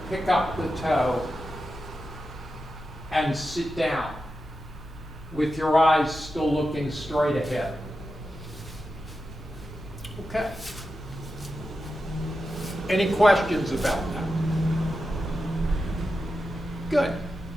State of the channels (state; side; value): normal; both; correlation 0.90